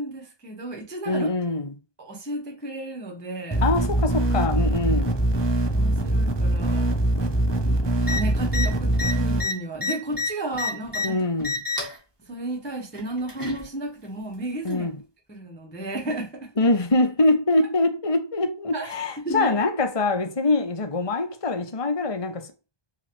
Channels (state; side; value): late; right; 1.2 ms